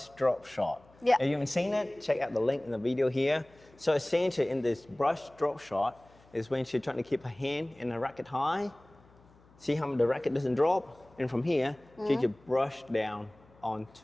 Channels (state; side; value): noise; left; hum, 28 dB below the sound